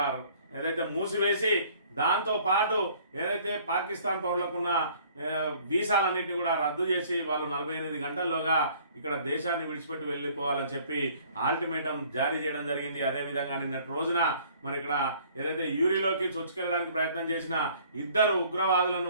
ఏదైతే మూసివేసి దాంతో పాటు ఏదైతే పాకిస్తాన్ పౌరులకున్న వీసాలన్నింటినీ కూడా రద్దు చేసి వాళ్ళు 48 గంటల్లోగా ఇక్కడ దేశాన్ని విడిచిపెట్టి వెళ్ళిపోవాలని చెప్పి అల్టిమేటం జారీ చేయడం జరిగింది. అదేవిధంగా నిన్నటి రోజున మరి ఇక్కడ ఏదైతే యూరిలోకి చొచ్చుకెళ్ళడానికి ప్రయత్నం చేసిన ఇద్దరు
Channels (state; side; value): inverted; both; correlation -0.56